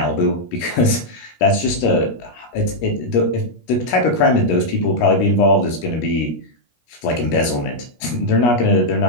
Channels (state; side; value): late; right; 17 ms